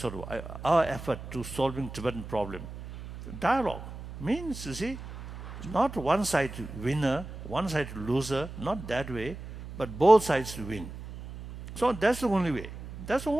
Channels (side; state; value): right; noise; hum, 12 dB below the sound